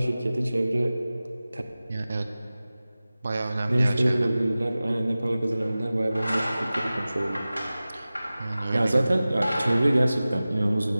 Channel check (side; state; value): both; inverted; correlation -0.97